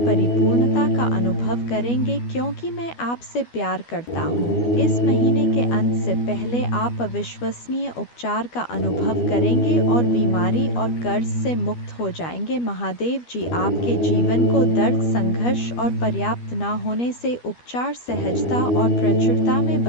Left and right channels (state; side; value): late; right; 12 ms